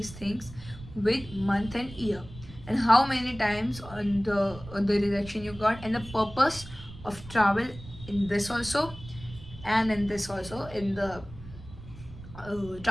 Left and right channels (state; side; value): noise; right; rumble, 15 dB below the sound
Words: things with month and year, and how many times on the rejection you got, and the purpose of travel in this also, and in this also, in the